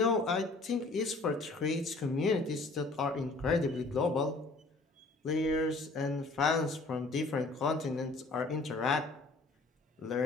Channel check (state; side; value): quieter; right; 3.3 dB